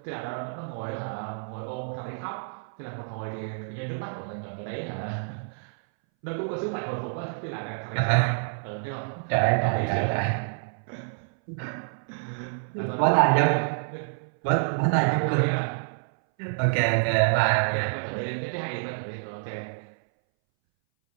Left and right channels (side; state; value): left; silent; 59 dB below the other